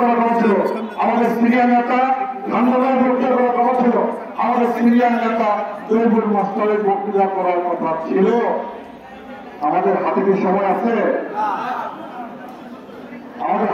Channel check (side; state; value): both; identical; correlation 1.00